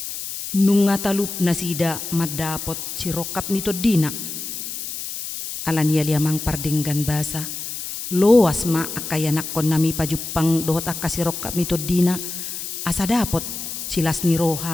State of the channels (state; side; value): noise; left; hiss, 7 dB below the sound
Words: nung ngatalup na sida madapot sirokap nito dina, alania liamang pardinggan basa loas ma akayanak kon nami pajupang dohot akasirokap nito dina asa dapot silas ni